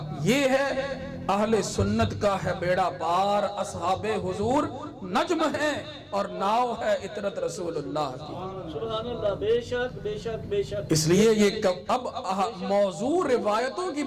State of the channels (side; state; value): both; identical; correlation 1.00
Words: یہ ہے، اہل سنت کا ہے بیڑا پار، اصحاب حضور نجم ہیں اور ناؤ ہے اطرت رسول اللہ کی۔ سبحان اللہ، بے شک بے شک بے شک۔ اس لیے یہ اب موضوع روایتوں کی